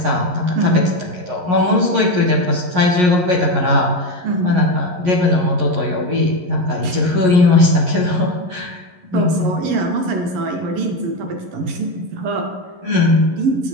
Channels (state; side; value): late; left; 11 ms